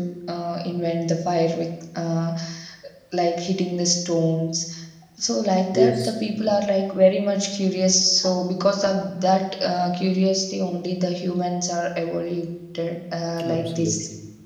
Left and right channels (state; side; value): identical; both; correlation 1.00